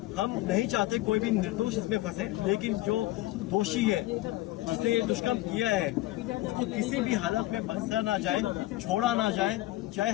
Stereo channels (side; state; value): right; quieter; 17.5 dB